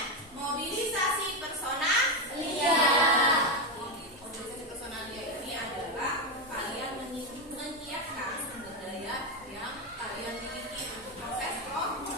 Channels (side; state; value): both; normal; correlation 0.10